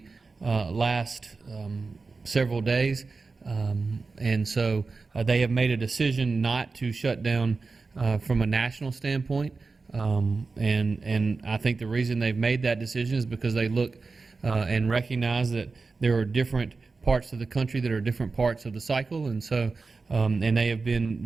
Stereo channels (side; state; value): left; quieter; 4.1 dB